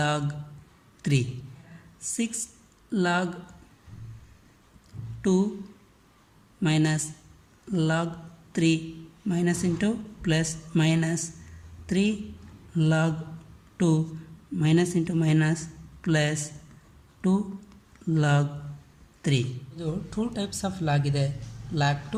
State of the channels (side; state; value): both; identical; correlation 1.00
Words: 3. 6 log 2 minus log 3 minus into plus minus 3 log 2 minus into minus plus 2 log 3. ಇದು 2 ಟೈಪ್ಸ್ ಆಫ್ ಲಾಗ್ ಇದೆ, log